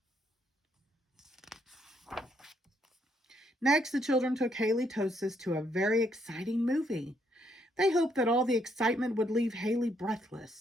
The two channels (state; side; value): normal; both; correlation 0.72